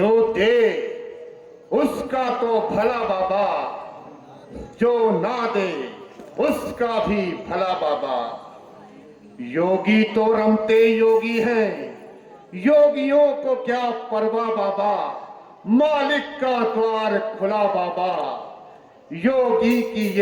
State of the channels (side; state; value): both; identical; correlation 1.00